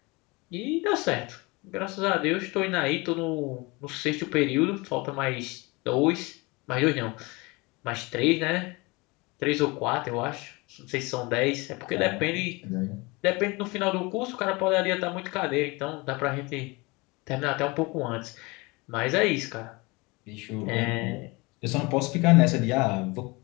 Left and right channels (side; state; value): right; quieter; 25.3 dB